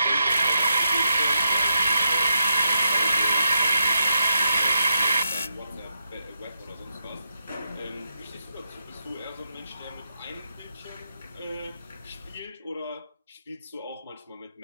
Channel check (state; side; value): inverted; both; correlation -0.83